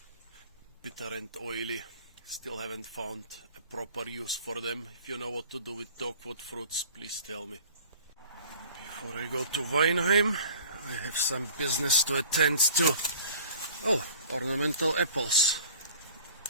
Bitter and oily. Still haven't found a proper use for them. If you know what to do with dogwood fruits, please tell me. Before I go to Weinheim, I have some business to attend to. Oh, ornamental apples.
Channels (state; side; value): inverted; both; correlation -0.46